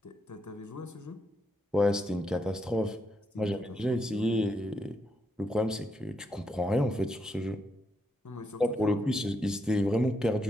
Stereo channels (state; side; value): normal; both; correlation 0.80